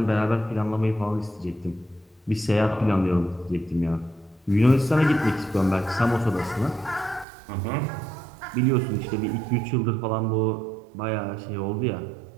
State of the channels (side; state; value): left; drops out; at 7.2 s